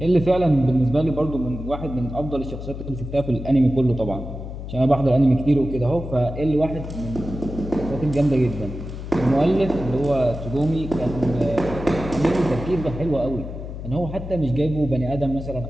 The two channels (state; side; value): noise; left; hum, 9 dB below the sound